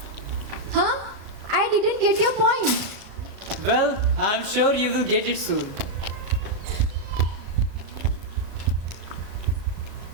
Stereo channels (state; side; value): late; left; 36 ms